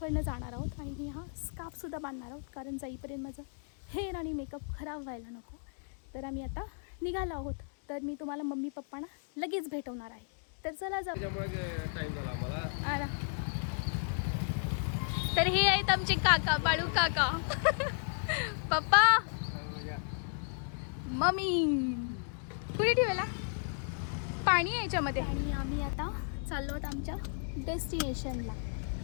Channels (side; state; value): right; silent; digital silence